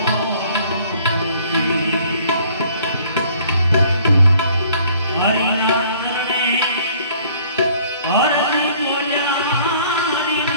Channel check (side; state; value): both; inverted; correlation -0.57